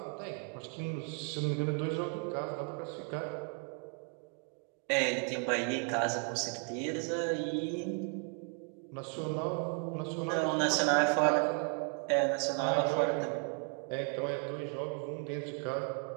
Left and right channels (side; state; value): left; quieter; 38.4 dB